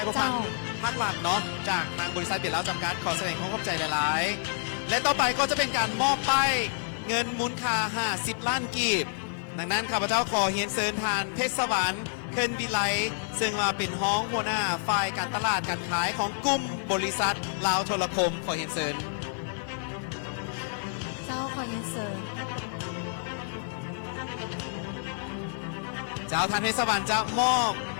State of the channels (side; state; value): right; silent; digital silence